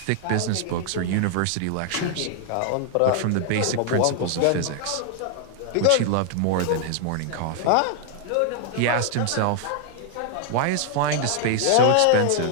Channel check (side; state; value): both; different; correlation 0.00